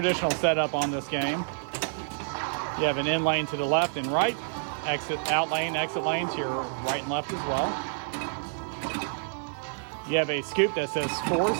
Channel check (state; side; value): silent; left; 59 dB below the other